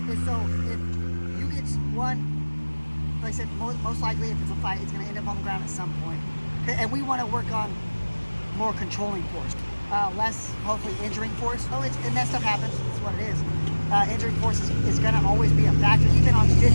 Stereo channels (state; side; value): inverted; both; correlation -1.00